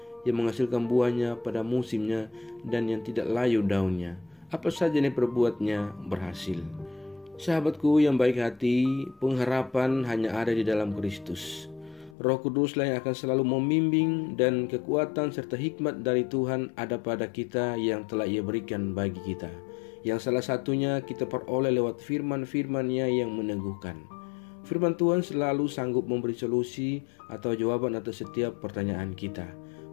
yang menghasilkan buahnya pada musimnya, dan yang tidak layu daunnya. Apa saja yang diperbuatnya berhasil. Sahabatku yang baik hati, pengharapan hanya ada di dalam Kristus. Roh Kuduslah yang akan selalu membimbing, dan kekuatan serta hikmat dari Tuhan ada pada kita yang telah Ia berikan bagi kita, yang salah satunya kita peroleh lewat firman-firman-Nya yang meneguhkan. Firman Tuhan selalu sanggup memberi solusi atau jawaban atas setiap pertanyaan kita,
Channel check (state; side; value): drops out; right; at 12.2 s